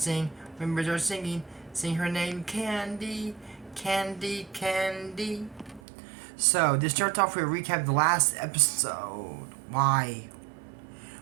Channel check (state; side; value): drops out; left; at 5.8 s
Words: when birds are singing. Sing her name, Candy. Candy, Candy. So, this starts off with a recap of the last episode. Why?